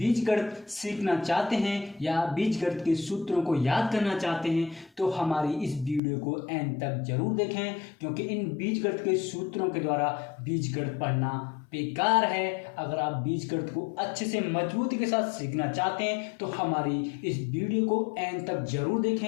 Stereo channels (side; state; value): right; drops out; at 6.0 s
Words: सीखना चाहते हैं या बीजगणित के सूत्रों को याद करना चाहते हैं तो हमारी इस वीडियो को एंड तक जरूर देखें, क्योंकि इन बीजगणित के सूत्रों के द्वारा बीजगणित पढ़ना बेकार है। अगर आप बीजगणित को अच्छे से मजबूती के साथ सीखना चाहते हैं तो हमारी इस वीडियो को एंड तक जरूर